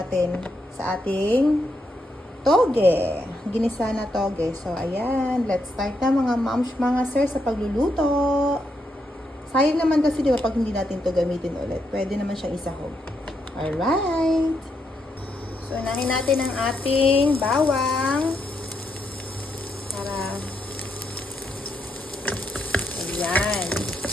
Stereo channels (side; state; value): both; normal; correlation 0.80